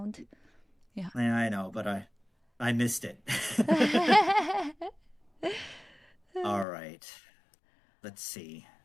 Yeah. I know, but I missed it. All right. Let's see.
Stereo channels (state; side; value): drops out; right; at 6.7 s